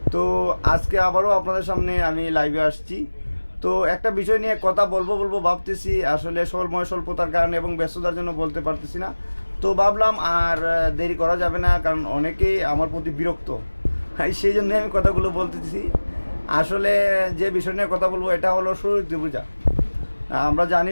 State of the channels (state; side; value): inverted; both; correlation -1.00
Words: তো আজকে আবারও আপনাদের সামনে আমি লাইভে আসছি। তো একটা বিষয় নিয়ে কথা বলবো ভাবতেছি, আসলে সময় স্বল্পতার কারণে এবং ব্যস্ততার জন্য বলতে পারতেছি না। তো ভাবলাম আর দেরি করা যাবে না, কারণ অনেকেই আমার প্রতি বিরক্ত। সেই জন্য আমি কথাগুলো বলতেছি। আসলে যে বিষয় নিয়ে কথা বলবো এটা হলো সরস্বতী পূজা। আমরা জানি